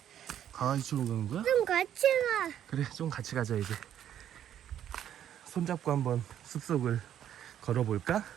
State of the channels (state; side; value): quieter; left; 10.4 dB